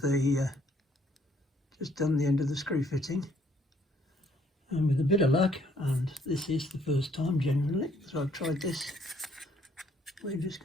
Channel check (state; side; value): normal; both; correlation 0.65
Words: screw fitting. And with a bit of luck, and this is the first time generally, so I've tried this, we're just